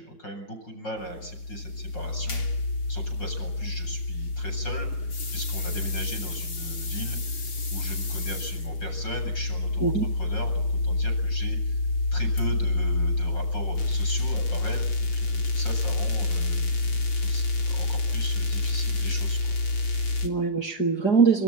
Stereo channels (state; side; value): late; right; 6.4 ms